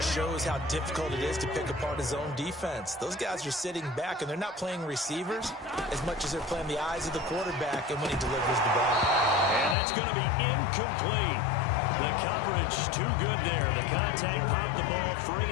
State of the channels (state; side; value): drops out; right; at 9.8 s